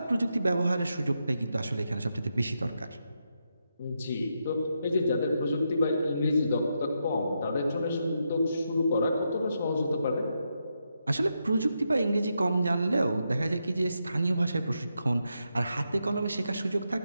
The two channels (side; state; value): both; inverted; correlation -0.83